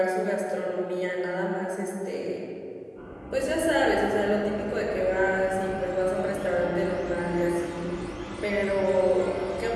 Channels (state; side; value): identical; both; correlation 1.00